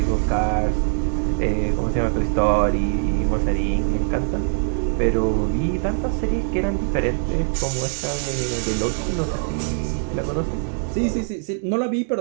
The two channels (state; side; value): silent; left; 64 dB below the other